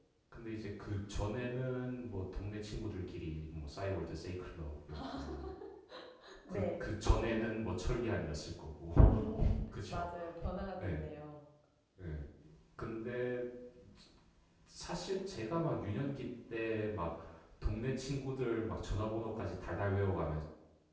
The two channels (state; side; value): identical; both; correlation 1.00